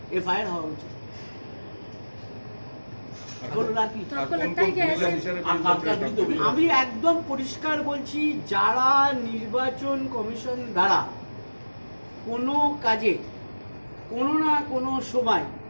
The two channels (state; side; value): inverted; both; correlation -1.00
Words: এফআইআর হওয়া উচিত। আমি একদম পরিষ্কার বলছি, যারা নির্বাচন কমিশন দ্বারা কোনো কাজে কোনো না কোনো সময়